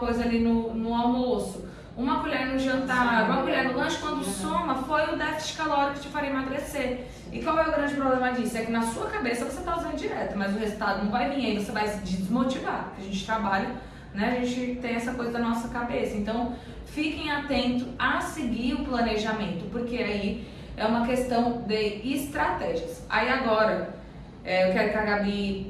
ali no almoço, uma colher no jantar, uma colher no lanche, quando soma, foi o déficit calórico que te faria emagrecer. E qual é o grande problema disso? É que na sua cabeça você está usando dieta, mas o resultado não vai vir, aí você vai se desmotivar. A gente trabalha, né? A gente tem essa coisa da nossa cabeça. Então, fiquem atentos a seguir o planejamento, porque aí é uma questão de estratégias. Aí agora, eu quero que a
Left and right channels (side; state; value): both; identical; correlation 1.00